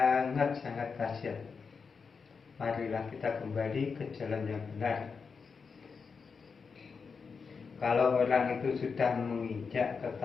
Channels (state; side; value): quieter; right; 5.4 dB